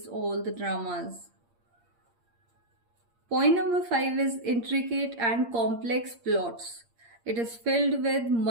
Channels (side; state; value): left; late; 8.6 ms